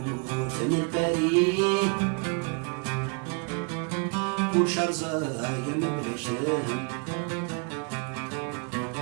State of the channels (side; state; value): left; quieter; 35.8 dB